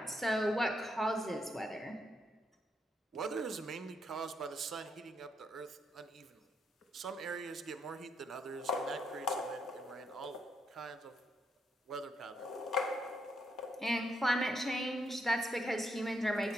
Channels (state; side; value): normal; both; correlation 0.77